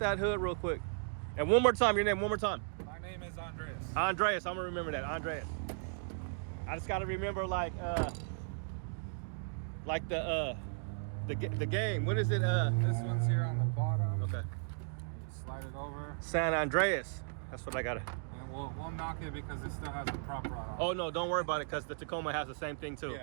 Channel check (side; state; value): left; silent; digital silence